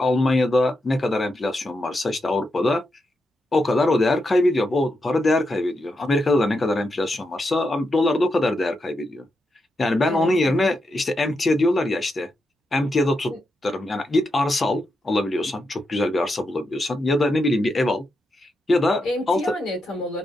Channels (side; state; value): both; normal; correlation 0.85